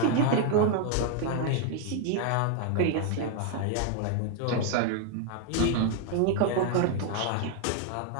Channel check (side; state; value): both; different; correlation 0.00